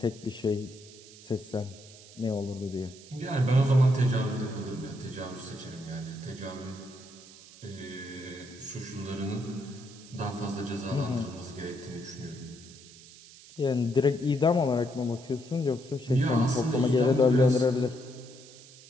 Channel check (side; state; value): right; noise; hiss, 20 dB below the sound